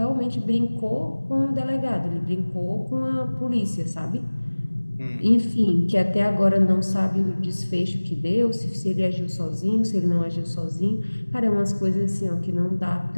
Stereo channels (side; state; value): both; inverted; correlation -1.00